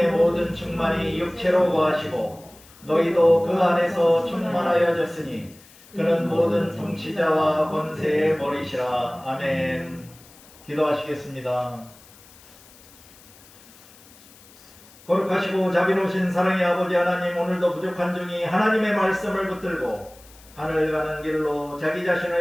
모든 충만이 육체로 거하시고 너희도 그 안에서 충만하여졌으니 그는 모든 통치자와 권세의 머리시라. 아멘. 기도하시겠습니다. 거룩하시고 자비로우신 사랑의 아버지 하나님, 오늘도 부족한 중이 하나님의 말씀을 붙들고 하늘 가는 길로 자기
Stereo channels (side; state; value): left; noise; hiss, 24 dB below the sound